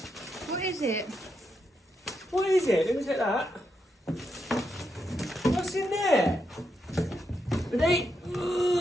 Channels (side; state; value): both; normal; correlation 0.82